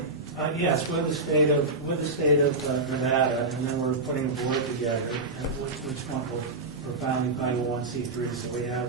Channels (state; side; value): quieter; left; 3.2 dB